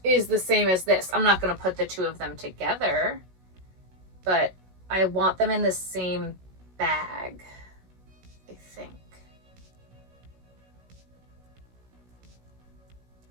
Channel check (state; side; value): late; left; 16 ms